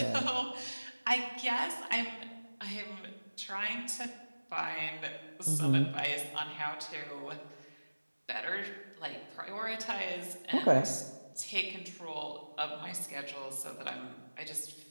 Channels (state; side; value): inverted; both; correlation -1.00